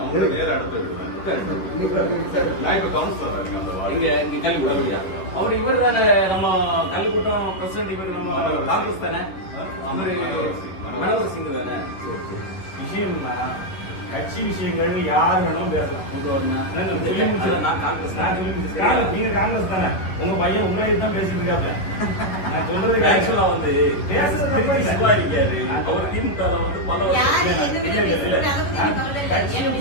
அவங்க நேர இடத்த விடுவேன். நான் இப்ப கவுன்சிலரா இருக்கேன் அந்த வார்டு. இங்க கல்லுக்கூட்டம். அவர் இவர் தானே நம்ம கல்லுக்கூட்டம் பிரசிடண்ட். இவர் நம்ம காங்கிரஸ் தானே, மனோகர் சிங் தானே. விஷயம்னா கட்சி விஷயங்கள் யாரு வேணும் பேசலாம். நீங்க காங்கிரஸ் தானே, உங்க பையன் உங்களே தான் பேசிட்டு இருக்காப்ல. நான் சொல்றது ஆக்சுவலா வந்து பேசுறது இருக்காரு. அவர் திமுக வந்து பல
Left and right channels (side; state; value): right; late; 11 ms